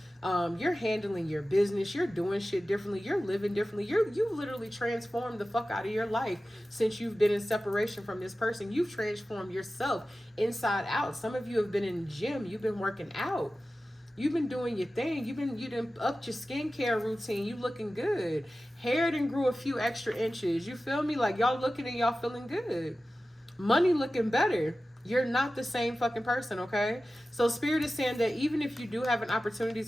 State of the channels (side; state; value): both; normal; correlation 0.95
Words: You're handling your business, you're doing shit differently, you're living differently. You've literally transformed the fuck out of your life since you've been in separation from this person. You've transformed yourself inside out. Some of you have been in the gym, you've been working out. You've been doing your thing. You done upped your skincare routine. You looking good. Hair done grew a few extra inches. You feel me? Like y'all looking and y'all feeling good. Money looking better. You're not the same fucking person, okay? So spirit is saying that even if you do have an opportunity